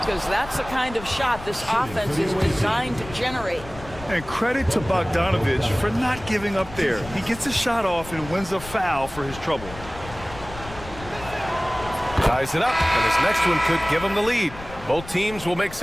that's the kind of shot this offense is designed to generate. And credit to Bogdanovich for not giving up there. He gets a shot off and wins a foul for his trouble. Ties it up, and his next one could give him the lead. Both teams will make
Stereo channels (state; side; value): noise; left; rumble, 15 dB below the sound